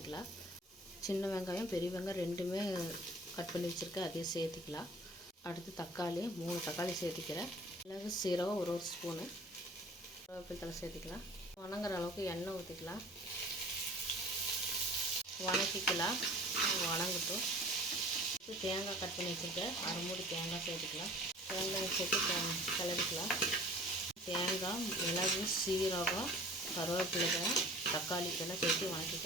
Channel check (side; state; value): both; normal; correlation 0.46